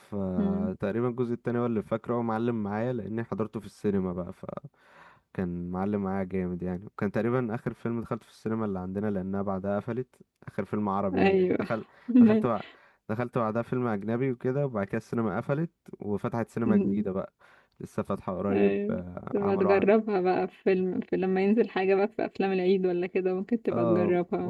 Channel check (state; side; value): identical; both; correlation 1.00